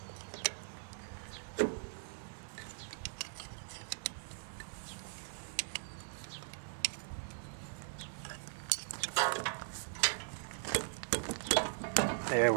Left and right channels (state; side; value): silent; left; 51 dB below the other